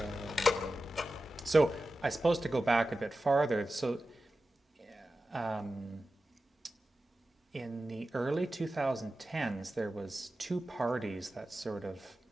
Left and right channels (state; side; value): normal; both; correlation 0.93